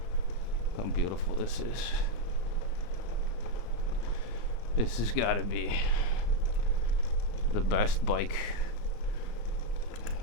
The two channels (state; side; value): late; right; 35 ms